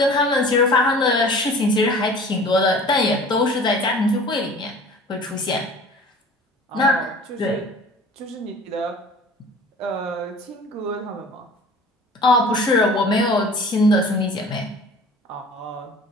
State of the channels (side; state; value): both; normal; correlation 0.44